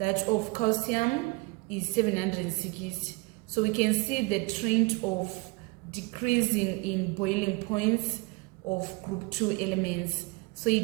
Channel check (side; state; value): left; quieter; 26.2 dB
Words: of calcium is 760. So we can see the trend of decreasing in boiling points of group 2 elements. So